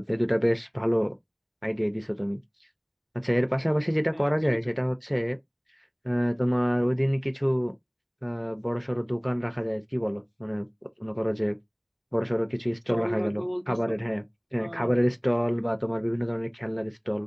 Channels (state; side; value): identical; both; correlation 1.00